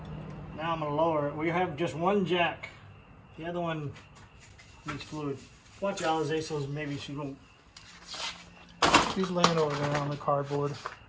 Now I'm going to lower it. We have just one jack. The other one needs fluid. Watch Alize, so maybe she won't. She's laying over there on the cardboard.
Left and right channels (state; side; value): identical; both; correlation 1.00